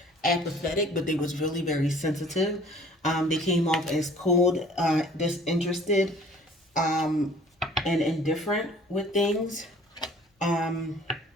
apathetic, but they was really very sensitive. They came off as cold, disinterested, and indifferent with things.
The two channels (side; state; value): both; normal; correlation 0.52